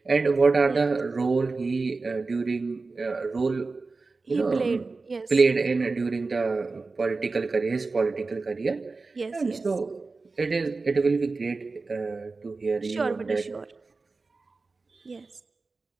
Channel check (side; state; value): left; quieter; 3.9 dB